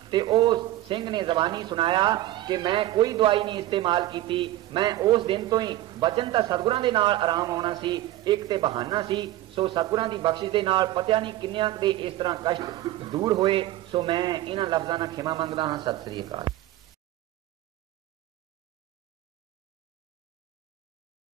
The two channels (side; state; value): left; quieter; 15.1 dB